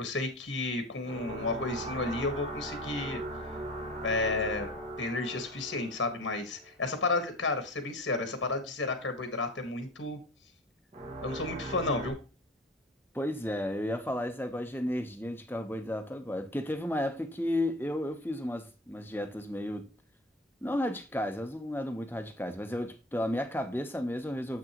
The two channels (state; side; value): normal; both; correlation 0.39